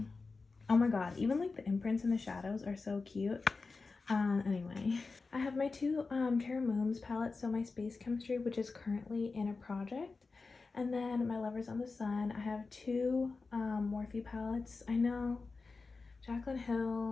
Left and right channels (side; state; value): right; quieter; 4.1 dB